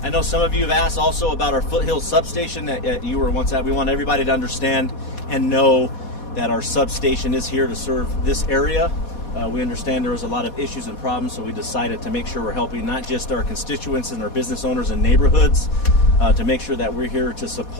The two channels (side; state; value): right; late; 4.2 ms